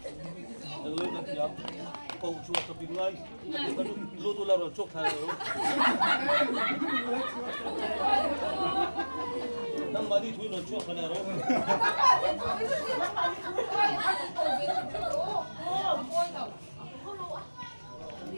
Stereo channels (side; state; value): both; inverted; correlation -1.00